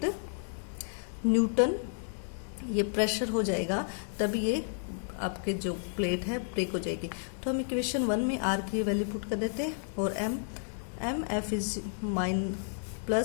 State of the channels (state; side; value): silent; right; 57 dB below the other